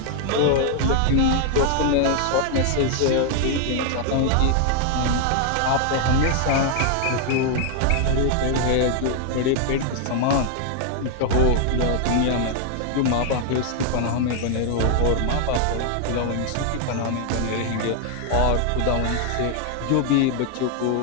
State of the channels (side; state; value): both; different; correlation 0.00